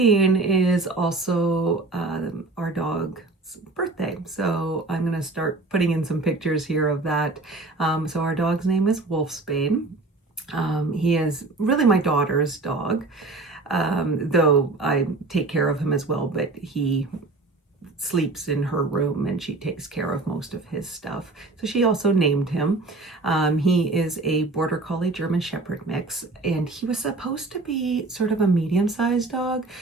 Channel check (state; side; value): quieter; left; 3.3 dB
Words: is also our dog's birthday, so I'm going to start putting in some pictures here of that. So our dog's name is Wolfsbane. He is really my daughter's dog, though I take care of him as well, but he sleeps in her room and she takes care of most of his stuff. So she also named him. He is a Border Collie German Shepherd mix, and he was supposed to be sort of a medium-sized dog.